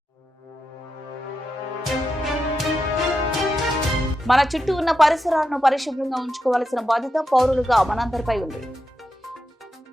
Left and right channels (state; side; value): normal; both; correlation 0.87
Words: మన చుట్టూ ఉన్న పరిసరాలను పరిశుభ్రంగా ఉంచుకోవాల్సిన బాధ్యత పౌరులుగా మనందరిపై ఉంది.